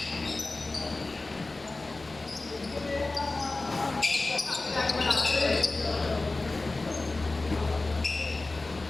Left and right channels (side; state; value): right; quieter; 3.2 dB